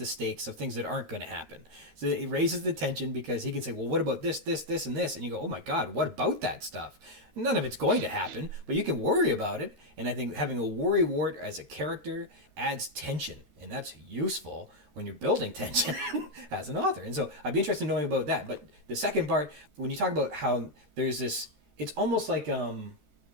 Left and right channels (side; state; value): left; late; 13 ms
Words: stakes of things that aren't going to happen. So it raises the tension because he can say, well, what about this, this, this, and this? And you go, oh my God, what about that stuff? None of it's going to happen, but you can worry about it. And I think having a worrywart as a character adds tension, and that's useful when you're building tension as an author. And so I'd be interested in knowing about that. But the second part, when you talk about how there's this, it's almost like